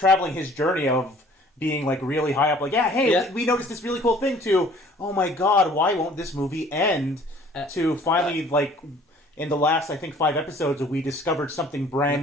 his journey of being like really high up, like, we noticed this really cool thing, to, oh my god, why won't this movie end, to finally, like, in the last, I think, 5 episodes, we discovered something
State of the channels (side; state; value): both; normal; correlation 0.53